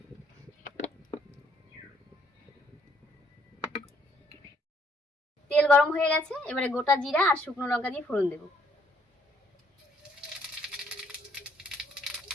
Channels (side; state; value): both; normal; correlation 0.68